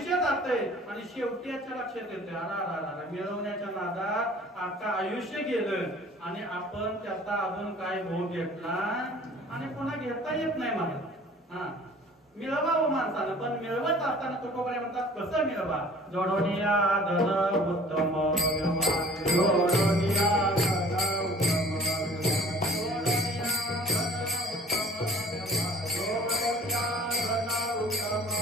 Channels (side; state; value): both; normal; correlation 0.50